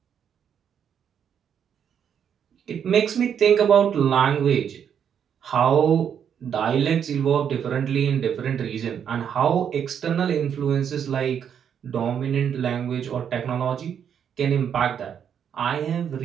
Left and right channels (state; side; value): quieter; left; 8.3 dB